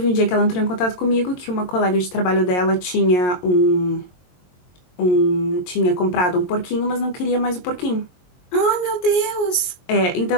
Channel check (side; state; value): right; late; 22 ms